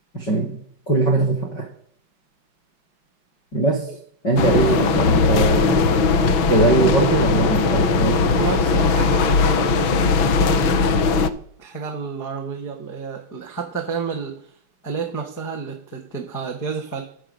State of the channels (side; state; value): right; late; 6.1 ms